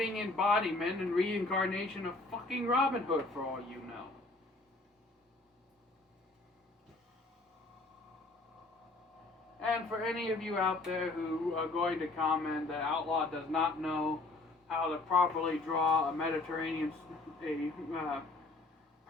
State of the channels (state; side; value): quieter; right; 3.2 dB